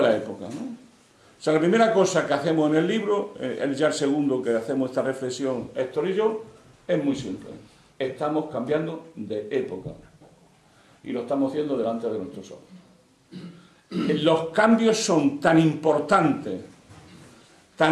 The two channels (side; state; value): both; identical; correlation 1.00